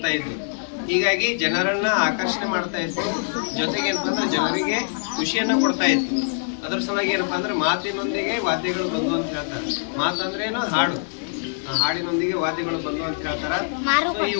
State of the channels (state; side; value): silent; right; digital silence